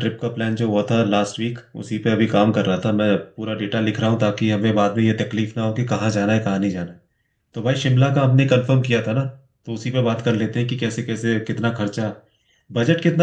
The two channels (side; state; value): both; identical; correlation 1.00